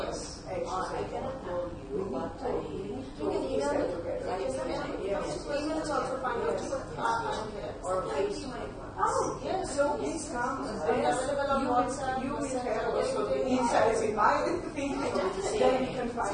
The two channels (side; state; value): both; identical; correlation 1.00